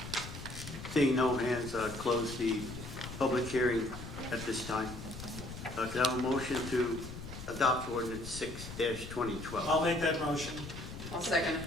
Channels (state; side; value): noise; left; rumble, 10 dB below the sound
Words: Seeing no hands, close the public hearing at this time. Could I have a motion to adopt ordinance 6-2012? I'll make that motion. I'll second it.